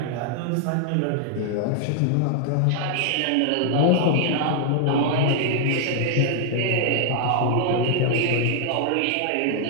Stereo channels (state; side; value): different; both; correlation 0.00